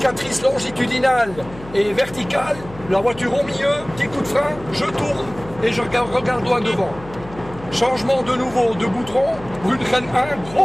longitudinale et verticale, la voiture au milieu, petit coup de frein, je tourne et je regarde loin devant. Changement de nouveau de goudron, Brunchen 1,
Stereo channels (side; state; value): left; noise; hum, 17 dB below the sound